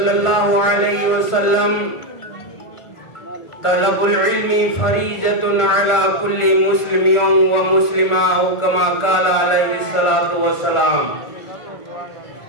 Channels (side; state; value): right; late; 1.4 ms